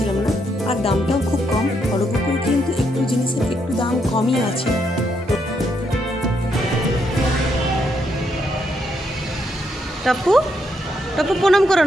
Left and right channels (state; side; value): normal; both; correlation 0.76